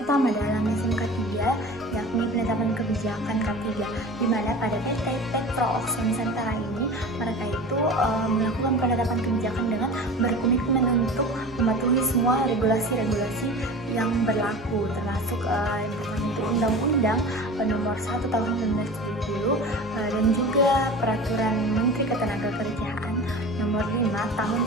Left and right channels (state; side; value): normal; both; correlation 0.35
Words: pertama dalam SMK 3 yakni penetapan kebijakan K3, di mana pada PT Petro Oxo Nusantara ini mereka itu melakukan penetapan kebijakan dengan berkomitmen untuk mematuhi semua regulasi-regulasi yang berlaku, termasuk yang pertama itu Undang-Undang Nomor 1 Tahun 1970 dan juga Peraturan Menteri Ketenagakerjaan Nomor 5 Tahun